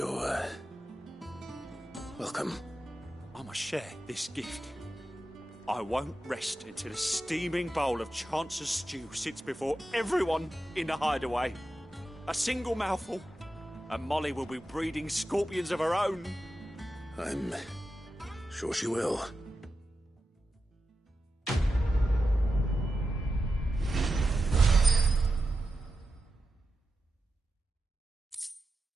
welcome. I must share this gift. I won't rest until a steaming bowl of Chance's Stew sits before everyone in the hideaway. A single mouthful, and Molly will be breeding scorpions of her own. I'm sure she will.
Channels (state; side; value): normal; both; correlation 0.90